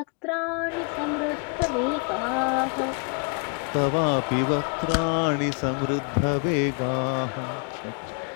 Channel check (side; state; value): right; quieter; 38.7 dB